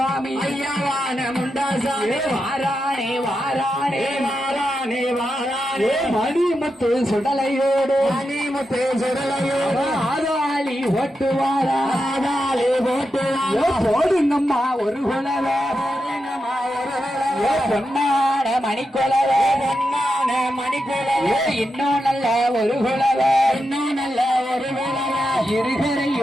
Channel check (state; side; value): normal; both; correlation 0.87